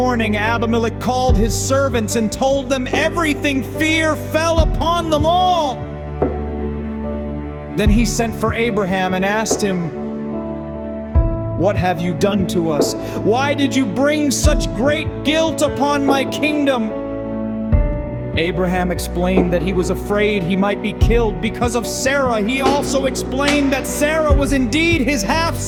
Abimelech called his servants and told them everything. Fear fell upon them all. Then he sent for Abraham and asked him, "What have you done to us? Why did you bring such great guilt upon my kingdom?" Abraham explained that he was afraid he might be killed because of Sarah. He also explained that Sarah was indeed his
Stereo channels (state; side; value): identical; both; correlation 1.00